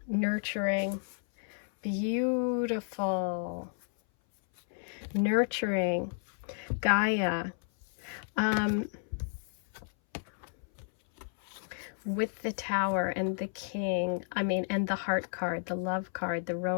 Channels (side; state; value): right; silent; 56 dB below the other